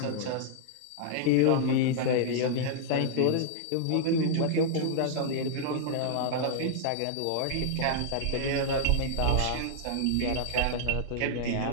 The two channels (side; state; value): both; different; correlation -0.01